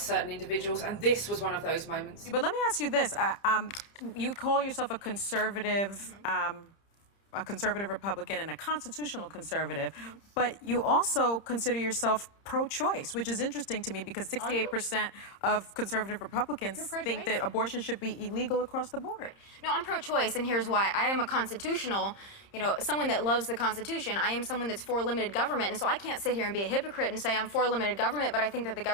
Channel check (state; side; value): late; right; 30 ms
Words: individuals, and this was one of those moments. But let me ask you this. You call yourself a conservative Republican and a constitutional conservative, but you also consider yourself pro-choice, which is interesting to me because 68% of conservative Republicans think that abortion should be illegal across the board. No, I'm pro-choice, and here's why. I am a constitutional, someone that loves the Constitution. I am someone that's for limited government, and so I can't sit here and be a hypocrite and say I'm for limited government, but I think that the